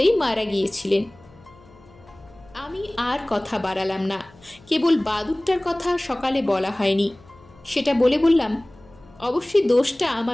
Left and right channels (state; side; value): noise; left; hum, 26 dB below the sound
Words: মারা গিয়েছিলেন। আমি আর কথা বাড়ালাম না, কেবল বাদুরটার কথা সকালে বলা হয়নি সেটা বলে বললাম, অবশ্যই দোষটা